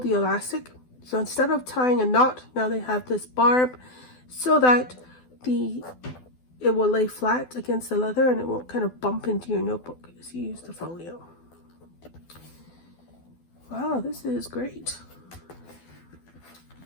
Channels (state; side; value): late; right; 12 ms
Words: the elastic. So instead of tying a knot, now they have this barb so that it will lay flat against the leather and it won't kind of bump into your notebook as you use the folio. Wow, this is great.